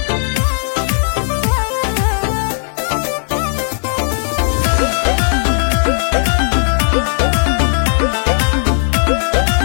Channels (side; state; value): right; silent; 60 dB below the other